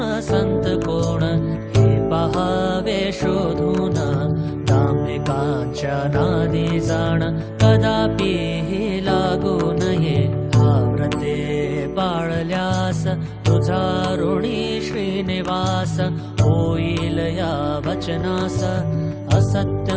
संत कोण हे पहावे शोधून दांभिकांच्या नादी जाण कदापि ही लागू नये व्रते पाळल्यास तुझा ऋणी श्रीनिवास होईल या वचनास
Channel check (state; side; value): identical; both; correlation 1.00